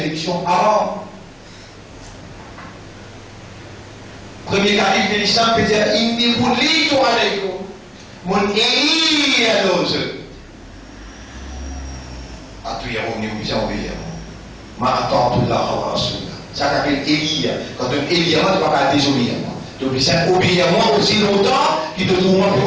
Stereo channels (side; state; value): both; identical; correlation 1.00